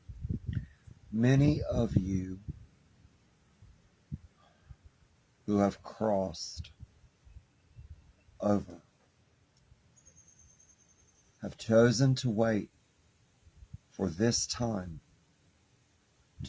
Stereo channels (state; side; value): identical; both; correlation 1.00